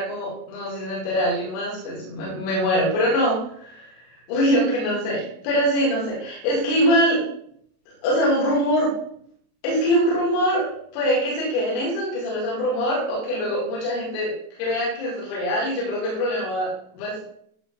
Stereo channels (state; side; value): late; right; 32 ms